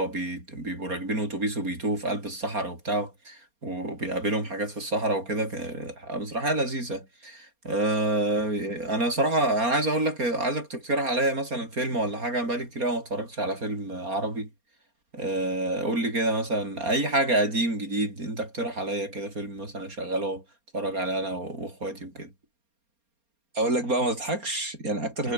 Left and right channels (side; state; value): left; late; 4.3 ms